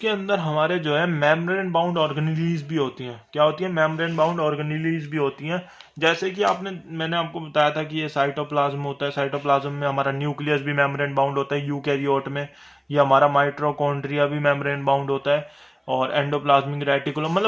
अंदर हमारे जो है मेम्ब्रेन बाउंड ऑर्गेनेलीज भी होती हैं। क्या होती है? मेम्ब्रेन बाउंड ऑर्गेनेलीज भी होती हैं। जैसे कि मैंने आपको बताया था कि ये साइटोप्लाज्म होता है, साइटोप्लाज्म में हमारा न्यूक्लियस भी मेम्ब्रेन बाउंड होता है यूकैरियोट में, ये हमारा माइटोकॉन्ड्रिया भी मेम्ब्रेन बाउंड होता है, और एंडोप्लाज्मिक रेटिकुलम,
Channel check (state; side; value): identical; both; correlation 1.00